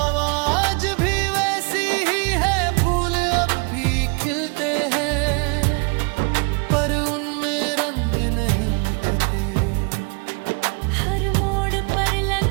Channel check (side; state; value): left; quieter; 34.0 dB